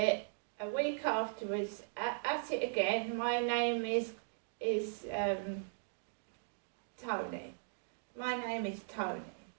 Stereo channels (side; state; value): left; silent; digital silence